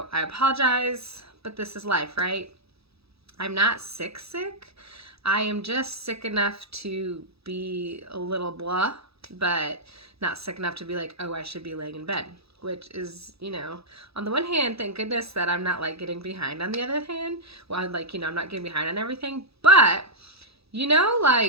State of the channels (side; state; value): left; late; 0.77 ms